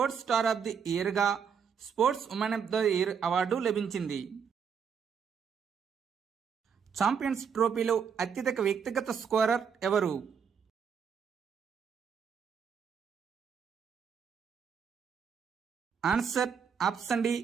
star of the ఇయర్గా sports woman of the year award లభించింది. ఛాంపియన్స్ ట్రోఫీలో అత్యధిక వ్యక్తిగత స్కోరర్ ఎవరు? Answer option D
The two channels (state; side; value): quieter; left; 6.9 dB